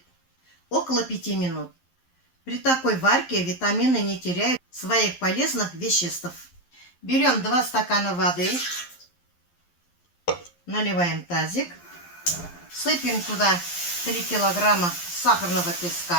около 5 минут. При такой варке витамины не теряют своих полезных веществ. Берем 2 стакана воды, наливаем тазик, сыпем туда 3 килограмма сахарного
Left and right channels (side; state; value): right; late; 11 ms